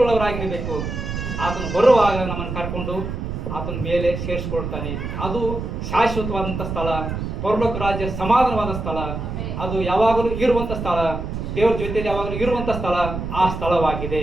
ಉಳ್ಳವರಾಗಿರಬೇಕು. ಆತನು ಬರುವಾಗ ನಮ್ಮನ್ನು ಕರ್ಕೊಂಡು ಆತನ ಮೇಲೆ ಸೇರಿಸ್ಕೊಳ್ತಾನೆ. ಅದು ಶಾಶ್ವತವಾದಂಥ ಸ್ಥಳ, ಪರಲೋಕ ರಾಜ್ಯ ಸಮಾಧಾನವಾದ ಸ್ಥಳ, ಅದು ಯಾವಾಗಲೂ ಇರುವಂಥ ಸ್ಥಳ, ದೇವರ ಜೊತೆಯಲ್ಲಿ ಯಾವಾಗಲೂ ಇರುವಂಥ ಸ್ಥಳ ಆ ಸ್ಥಳವಾಗಿದೆ.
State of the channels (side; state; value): right; noise; rumble, 5 dB below the sound